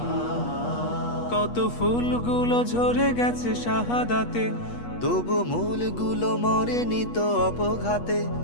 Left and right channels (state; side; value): late; right; 8.3 ms